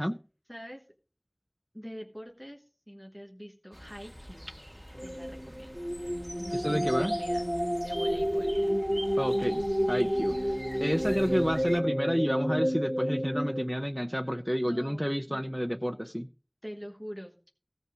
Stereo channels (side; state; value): both; identical; correlation 1.00